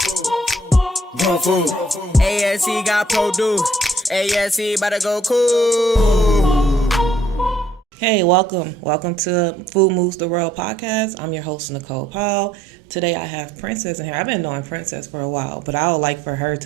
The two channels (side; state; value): both; normal; correlation 0.64